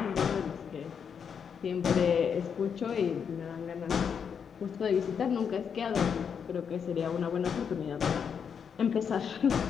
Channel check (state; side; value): quieter; right; 7.0 dB